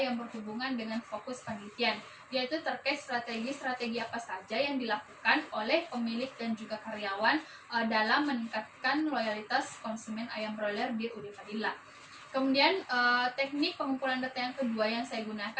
berhubungan dengan fokus penelitian, yaitu terkait strategi-strategi apa saja yang dilakukan oleh pemilik dan juga karyawan dalam meningkatkan loyalitas konsumen ayam broiler di UD Fadila. Kemudian teknik pengumpulan data yang kedua yang saya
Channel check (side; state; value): both; identical; correlation 1.00